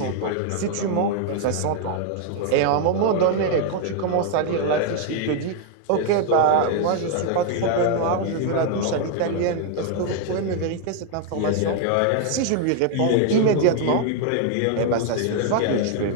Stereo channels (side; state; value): both; different; correlation 0.00